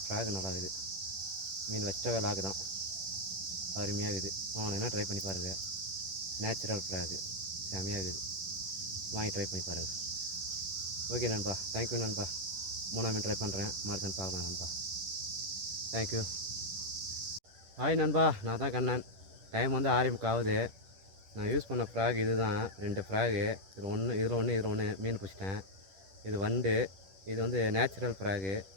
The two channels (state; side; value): late; left; 10 ms